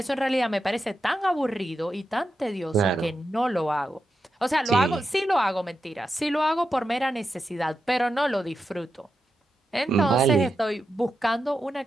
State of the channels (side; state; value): both; normal; correlation 0.88